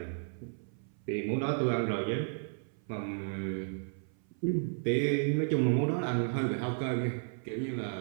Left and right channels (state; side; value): silent; left; 56 dB below the other